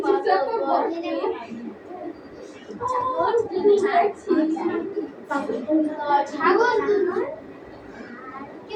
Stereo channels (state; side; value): identical; both; correlation 1.00